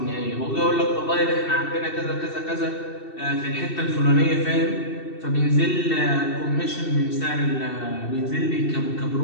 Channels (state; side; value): late; right; 2.7 ms